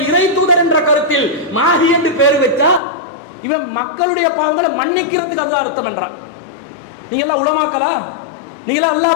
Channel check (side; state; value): right; drops out; at 2.8 s